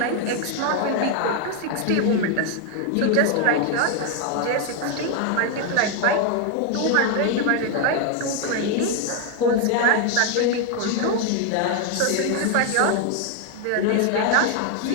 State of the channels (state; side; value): different; both; correlation 0.01